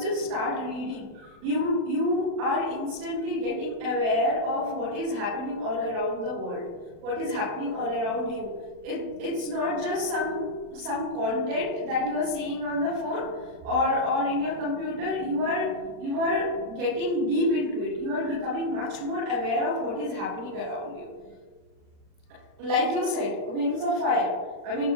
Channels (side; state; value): left; late; 40 ms